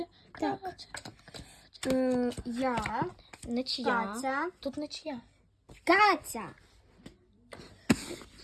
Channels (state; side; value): identical; both; correlation 1.00